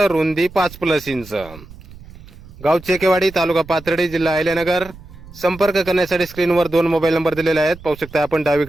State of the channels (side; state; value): right; noise; rumble, 18 dB below the sound